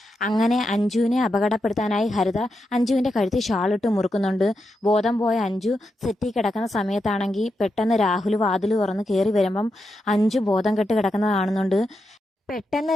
അങ്ങനെ അഞ്ജുവിനെ അപകടപ്പെടുത്താനായി ഹരിത അഞ്ജുവിന്റെ കഴുത്തിൽ ഷാളിട്ട് മുറുക്കുന്നുണ്ട്. ബോധം പോയ അഞ്ജു സെറ്റിൽ കിടക്കുന്ന സമയത്താണെങ്കിൽ പെട്ടെന്ന് രാഹുൽ വാതിൽ തുറന്ന് കയറി വരുമ്പം അഞ്ജു ബോധം കെട്ട് കിടക്കുന്നത് കാണുന്നുണ്ട്. പെട്ടെന്ന്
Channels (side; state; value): both; normal; correlation 0.86